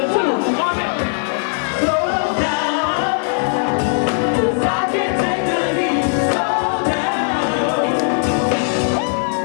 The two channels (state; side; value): silent; right; 58 dB below the other